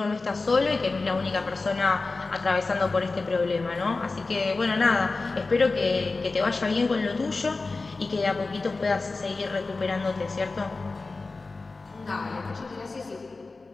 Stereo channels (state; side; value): quieter; right; 3.7 dB